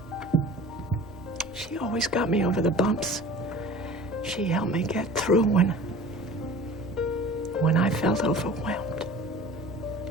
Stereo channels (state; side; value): normal; both; correlation 0.41